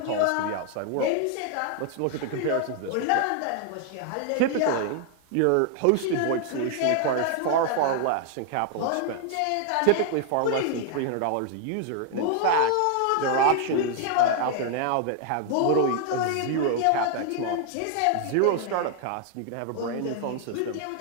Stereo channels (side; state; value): both; different; correlation 0.00